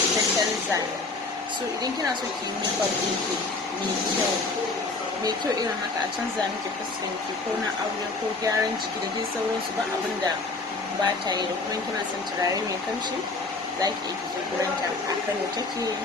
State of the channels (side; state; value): right; quieter; 3.6 dB